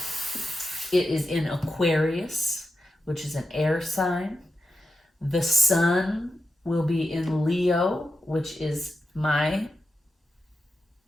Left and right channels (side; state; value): both; normal; correlation 0.88